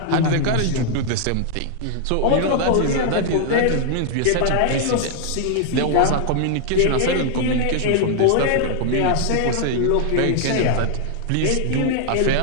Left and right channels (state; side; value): different; both; correlation 0.00